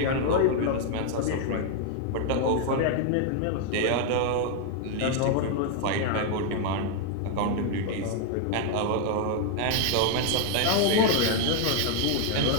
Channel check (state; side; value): different; both; correlation 0.00